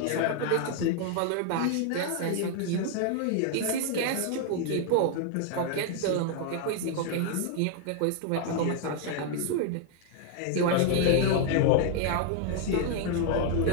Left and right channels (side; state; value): both; different; correlation 0.00